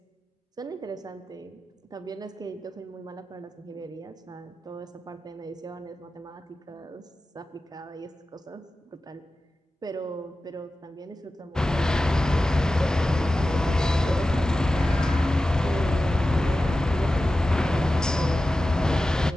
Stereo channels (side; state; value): both; normal; correlation 0.94